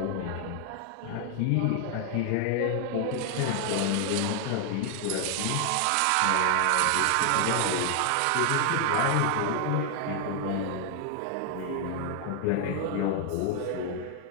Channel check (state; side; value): different; both; correlation 0.00